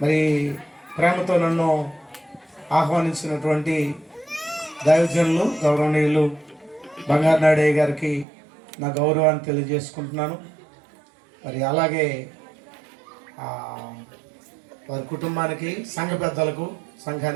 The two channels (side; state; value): left; drops out; at 8.2 s